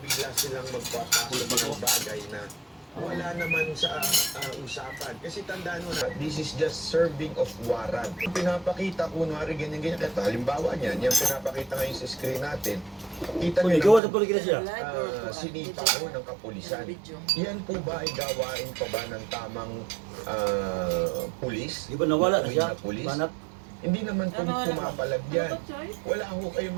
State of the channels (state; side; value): drops out; left; at 14.0 s